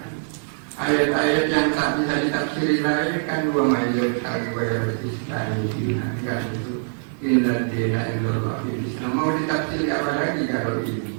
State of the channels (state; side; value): silent; left; 63 dB below the other